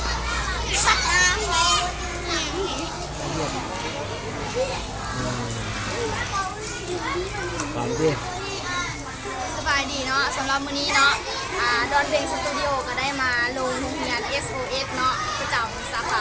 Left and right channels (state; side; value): identical; both; correlation 1.00